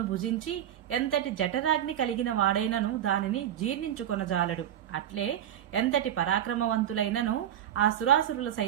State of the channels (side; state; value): left; quieter; 10.9 dB